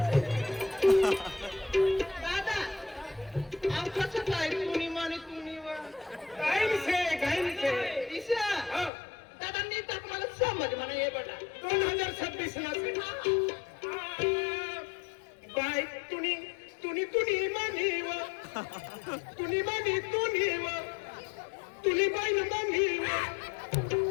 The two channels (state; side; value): drops out; right; at 8.9 s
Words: दादा आव कसं काय तुम्ही म्हणे तुम्ही काय ईशा दादा नीट मला समज म्हणा हे बघा 2026 ला बाय तुनी तुनी तुनी म्हणीव तुनी म्हणी तुनी बाई म्हणीव